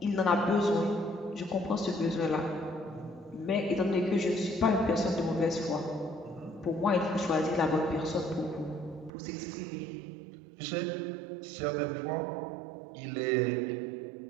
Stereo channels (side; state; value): left; drops out; at 9.1 s